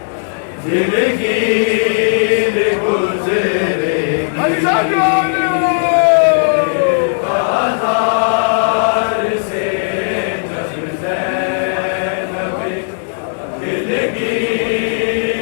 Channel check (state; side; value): silent; right; digital silence